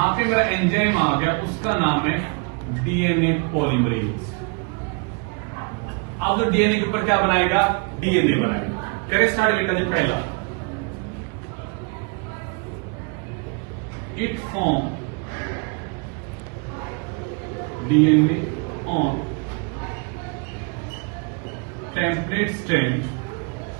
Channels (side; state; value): left; quieter; 32.4 dB